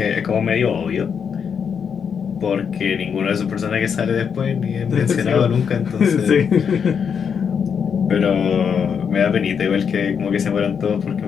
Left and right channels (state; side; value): quieter; right; 6.9 dB